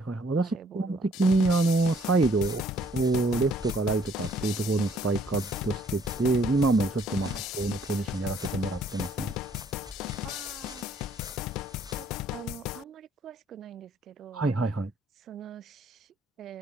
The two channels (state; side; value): normal; both; correlation 0.62